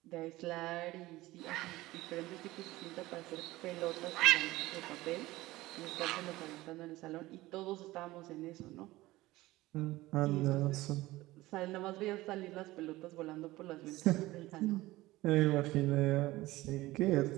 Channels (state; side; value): quieter; left; 18.3 dB